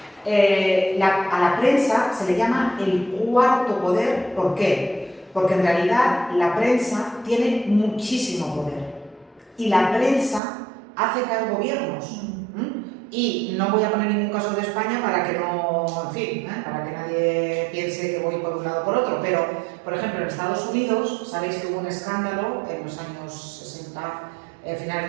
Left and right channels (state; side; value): drops out; left; at 10.4 s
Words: A la prensa se le llama el cuarto poder. ¿Por qué? Porque en realidad la prensa tiene muchísimo poder y la prensa hace caer gobiernos. Y no voy a poner ningún caso de España para que no, en fin, para que nadie piense que voy por un lado o por otro, pero, por ejemplo, en Estados Unidos, sabéis que hubo un escándalo en los años 60, finales